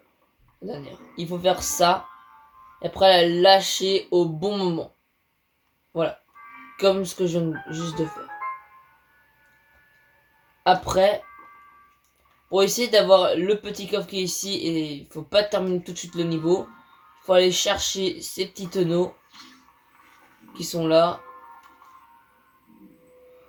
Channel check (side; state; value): both; identical; correlation 1.00